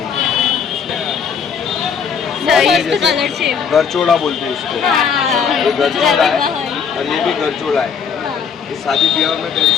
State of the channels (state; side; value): quieter; right; 6.7 dB